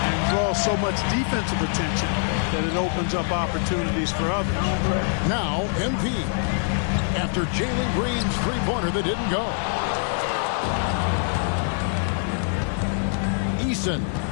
draws so much defensive attention that it opens up opportunities for others. Now, MP. After Jalen Green's three-pointer that didn't go. Eason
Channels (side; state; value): right; silent; 62 dB below the other